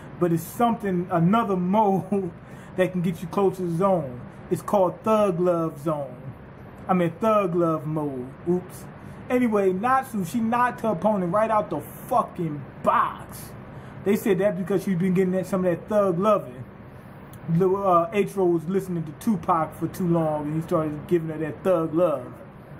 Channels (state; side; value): identical; both; correlation 1.00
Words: But it's something, another mode that can get you close to the zone. It's called Thug Love Zone. I mean, Thug Love mode. Oops. Anyway, Natsu, she knocked her opponent right out the fucking box. They said that because she'd been getting some of that thug loving. H-Row was listening to Tupac for too long, and he started giving her that thug love.